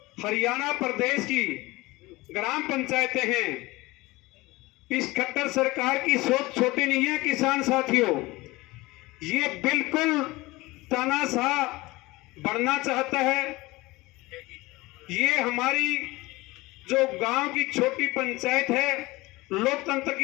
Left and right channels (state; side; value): quieter; right; 21.1 dB